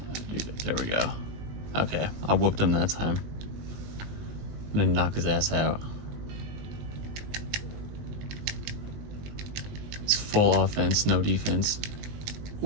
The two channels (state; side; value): late; left; 19 ms